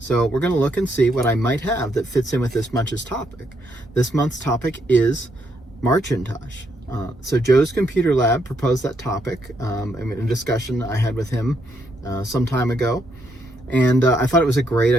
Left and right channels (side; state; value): both; normal; correlation 0.76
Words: we're going to look and see what I might have that fits in with this month's topic. This month's topic is Marcintosh. So Joe's Computer Lab proposed that topic in a discussion I had with him some time ago, and I thought it was a great